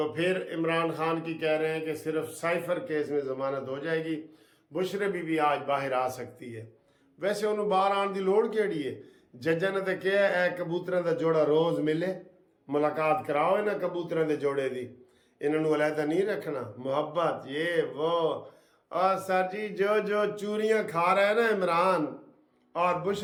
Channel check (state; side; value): identical; both; correlation 1.00